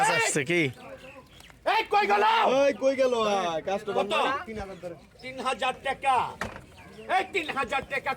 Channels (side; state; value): both; identical; correlation 1.00